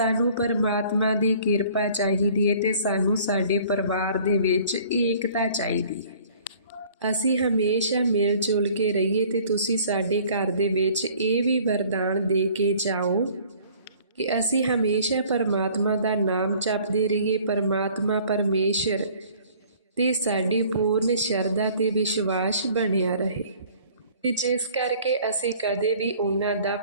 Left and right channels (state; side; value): inverted; both; correlation -0.53